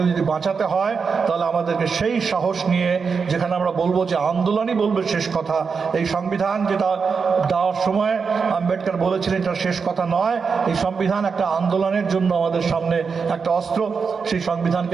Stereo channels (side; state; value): left; quieter; 5.5 dB